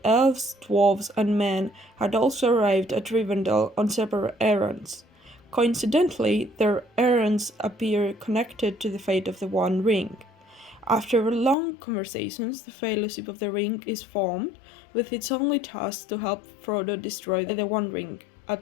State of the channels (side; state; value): right; drops out; at 11.6 s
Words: elves, dwarves, and men had also arrived at Rivendell on separate errands. Coincidentally, their errands appear connected to the fate of the One Ring. After long conversations, the Fellowship of the Ring is formed, with its only task to help Frodo destroy the One Ring